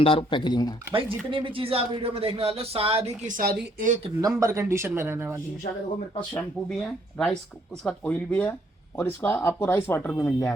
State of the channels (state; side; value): normal; both; correlation 0.67